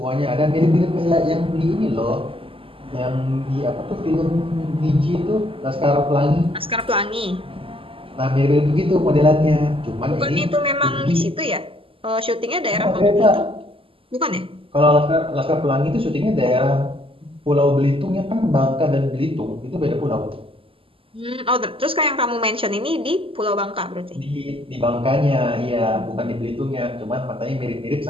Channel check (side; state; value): left; late; 0.26 ms